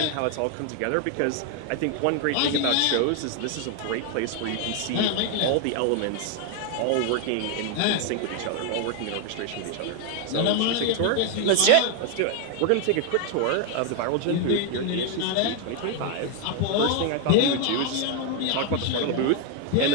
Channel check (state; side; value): different; both; correlation 0.00